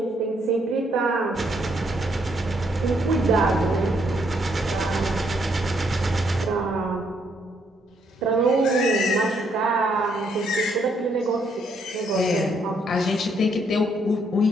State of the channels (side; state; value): both; normal; correlation 0.72